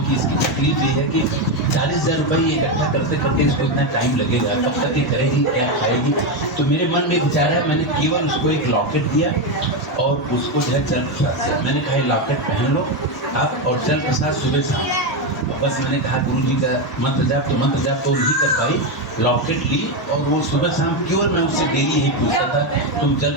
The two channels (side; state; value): both; normal; correlation 0.09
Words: इसकी तकलीफ ये है कि 40,000 रुपये इकट्ठा करते करते इसको इतना टाइम लगेगा, कब तक ये करेगी, क्या खाएगी। तो मेरे मन में विचार है, मैंने केवल उसको एक लॉकेट दिया और उसको जो है जल प्रसाद दिया। मैंने कहा लॉकेट पहन लो आप, और जल प्रसाद सुबह शाम। बस मैंने कहा गुरु जी का मंत्र जाप तो नहीं कर पाई, लॉकेट ली, और वो सुबह शाम केवल मैं उससे डेली यही पूछता था तुम जल